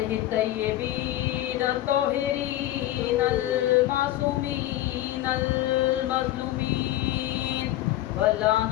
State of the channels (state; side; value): quieter; right; 14.6 dB